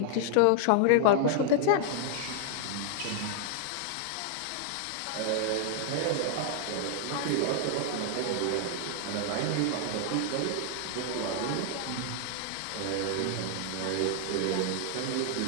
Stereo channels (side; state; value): both; different; correlation 0.00